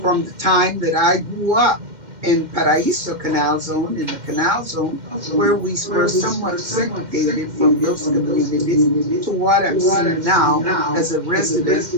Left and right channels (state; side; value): late; left; 2.1 ms